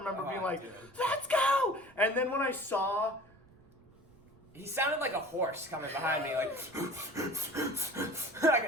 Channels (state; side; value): noise; right; rumble, 27 dB below the sound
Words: remember being like, let's go! And then when I saw... He sounded like a horse coming behind me, like... I